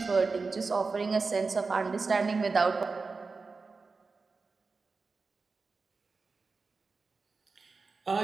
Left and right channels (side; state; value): left; quieter; 4.3 dB